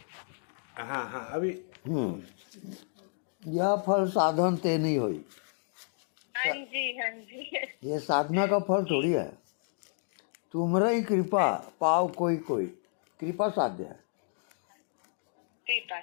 हाँ हाँ अभी यह फल साधन ते नहीं हुई, हाँ जी हाँ जी। ये साधना का फल थोड़ी है। तुमरा ही कृपा पाव कोई कोई, कृपा साध्य है। कृपा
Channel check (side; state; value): right; silent; digital silence